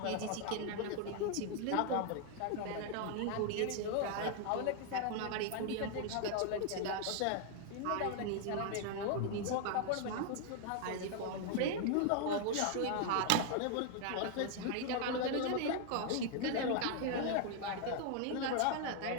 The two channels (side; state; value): both; different; correlation 0.00